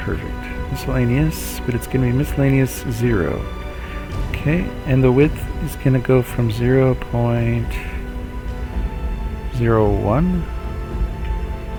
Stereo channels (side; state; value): both; identical; correlation 1.00